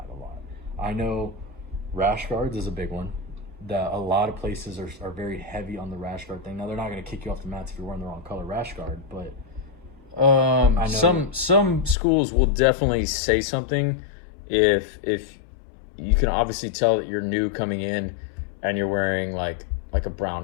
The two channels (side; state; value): right; drops out; at 12.0 s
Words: a lot. I know rash guards is a big one. That a lot of places are very heavy on the rash guard thing. Now, they're not going to kick you off the mats if you're wearing the wrong color rash guard, but I know some schools will definitely say something if you can obviously tell that you're new coming in and you're wearing like a